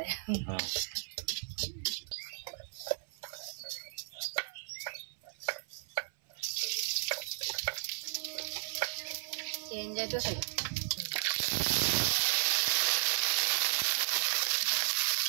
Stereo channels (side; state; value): left; silent; 55 dB below the other